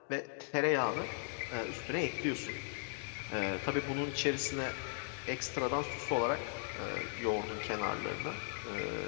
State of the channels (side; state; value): right; silent; 53 dB below the other